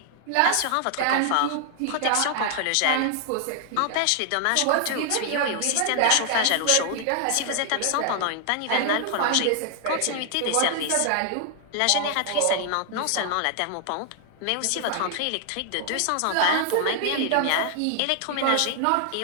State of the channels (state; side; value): different; both; correlation 0.00